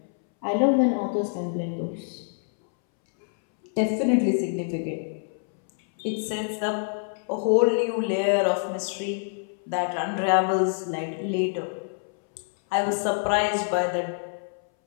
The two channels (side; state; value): right; silent; 61 dB below the other